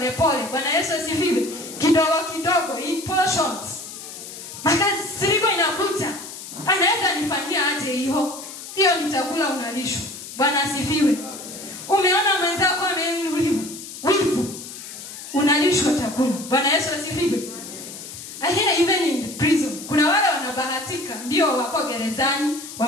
Bwana Yesu asifiwe. Kidogo kidogo, in portions. Makasiriko inakuja, anaweza nifanyia aje hiyo? Hiyo ni chakula unalishwa. Bwana asifiwe. Umeona mwenzako ameinuliwa, wivu, unalishwa chakula. Bwana Yesu asifiwe. Ahia, even in prison kuna wale wanabahatika, ndio wako gerezani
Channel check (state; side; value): noise; left; hiss, 12 dB below the sound